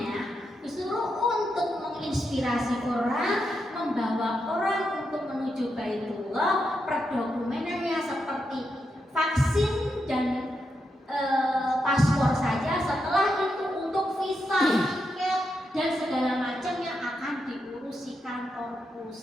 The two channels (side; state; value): both; normal; correlation 0.84